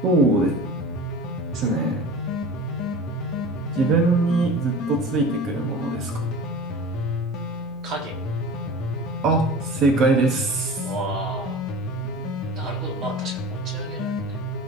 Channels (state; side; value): noise; left; hum, 24 dB below the sound